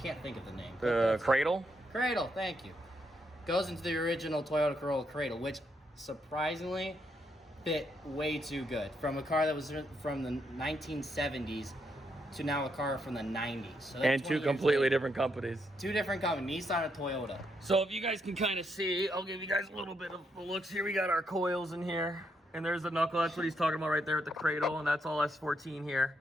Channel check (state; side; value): normal; both; correlation 0.78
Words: think of the name. Cradle? Cradle, thank you. Goes into the original Toyota Corolla cradle, which surprisingly fit way too good. From a car that was from the 1970s to now a car from the 90s. So and two completely different companies. Two different companies, Nissan and Toyota. So if you guys can kind of see, I'll give you guys a little bit of the looks here. We got our coils in here. And there's the knuckle. That's what he's talking about right there at the cradle. And that's all S14